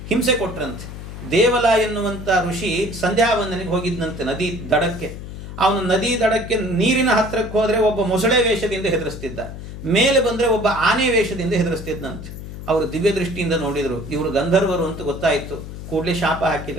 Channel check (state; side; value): noise; left; hum, 10 dB below the sound